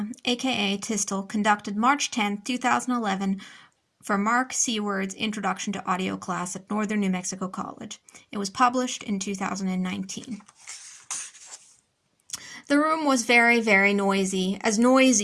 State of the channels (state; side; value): identical; both; correlation 1.00